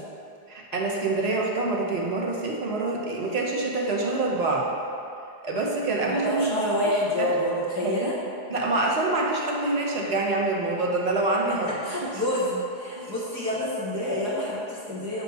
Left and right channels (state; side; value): late; right; 4.8 ms